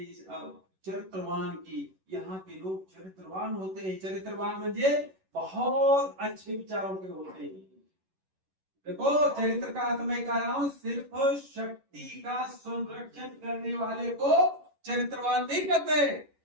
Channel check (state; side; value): late; left; 11 ms